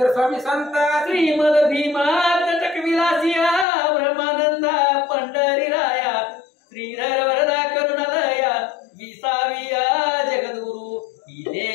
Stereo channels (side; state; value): right; drops out; at 3.7 s